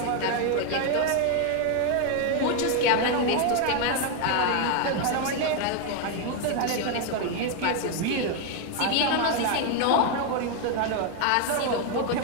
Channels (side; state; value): both; different; correlation 0.01